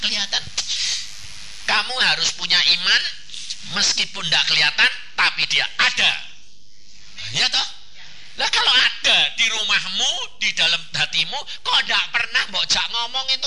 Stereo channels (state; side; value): identical; both; correlation 1.00